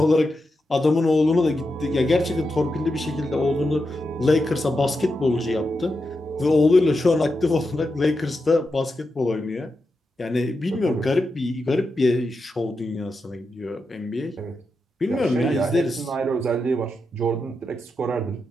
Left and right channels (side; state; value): both; normal; correlation 0.87